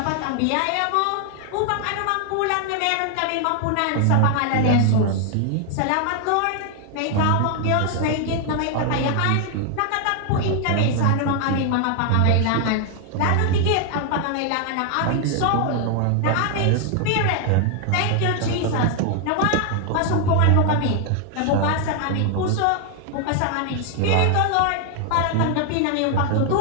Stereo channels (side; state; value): both; different; correlation 0.00